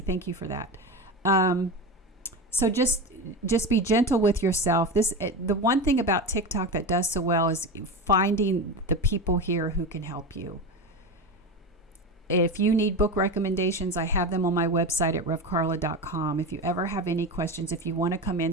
you for that. So just be gentle with yourself. The one thing about TikTok that does so well is finding the people here who can help you. If you need book recommendations, I have them on my website at revkarla.com. If you ever have any questions, if you want to come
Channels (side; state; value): both; normal; correlation 0.22